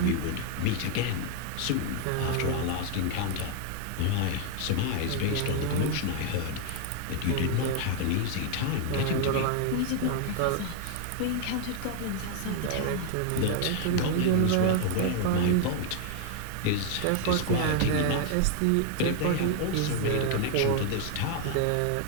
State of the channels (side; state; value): both; different; correlation 0.00